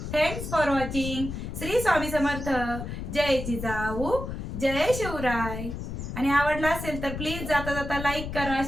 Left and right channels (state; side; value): noise; left; rumble, 6 dB below the sound